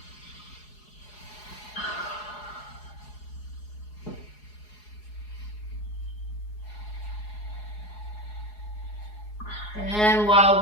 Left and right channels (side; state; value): right; late; 4.8 ms